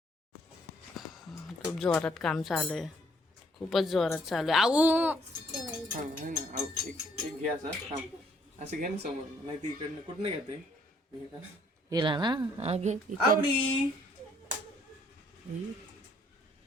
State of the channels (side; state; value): both; normal; correlation 0.65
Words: खूप जोरात काम चालू आहे, खूपच जोरात चालू आहे. आऊ एक घे असं घे ना समोर, नाही ती इकडनं कुठनं घेते गेला ना. घे इकडे. आवडी.